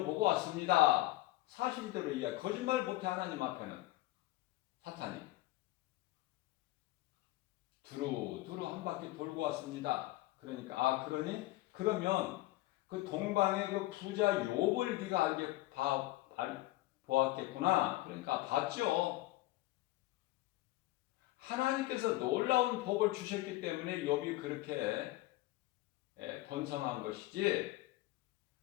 왔습니다. 사실대로 이야기, 거짓말 못해 하나님 앞에는 사탄이 두루두루 한 바퀴 돌고 왔습니다. 그러니까 그러면 그 동방의 그 부자 욥을 네가 보았겠구나. 그러니까 봤죠. 하나님께서 놀라운 복을 주셨기 때문에 욥이 그렇게 번성한 것이지.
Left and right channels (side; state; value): right; quieter; 18.0 dB